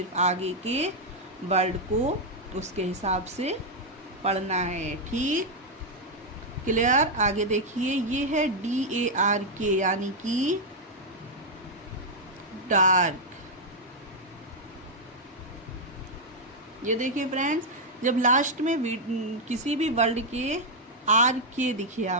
आगे के वर्ड को उसके हिसाब से पढ़ना है। ठीक, क्लियर। आगे देखिए, ये है DARK यानी कि डार्क। ये देखिए फ्रेंड्स, जब लास्ट में किसी भी वर्ड के RK दिखे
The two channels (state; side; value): normal; both; correlation -0.01